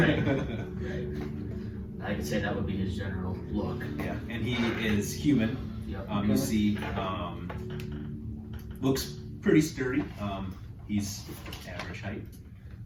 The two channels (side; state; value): both; identical; correlation 1.00